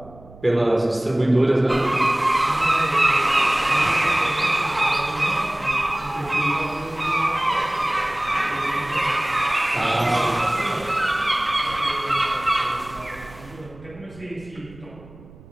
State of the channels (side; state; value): right; noise; rumble, 21 dB below the sound